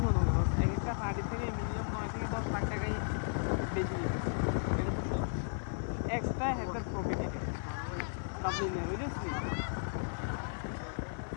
মনে হয় এক একটা হাঁড়ি থেকে মিনিমাম 9 থেকে 10 লাখ টাকাই বেশি যেতেছে, এক্সট্রা একটা প্রফিট এটা বাবলিনের, বুঝেছিস?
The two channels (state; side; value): silent; right; digital silence